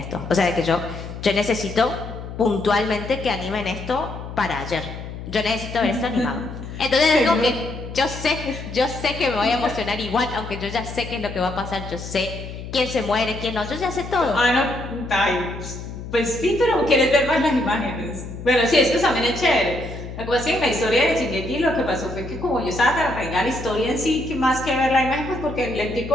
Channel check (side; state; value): left; noise; hum, 10 dB below the sound